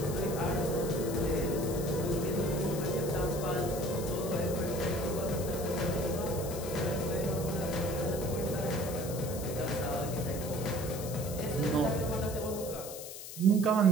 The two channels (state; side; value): noise; left; hiss, 10 dB below the sound